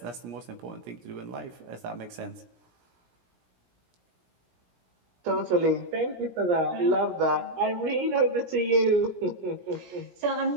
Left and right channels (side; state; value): left; late; 17 ms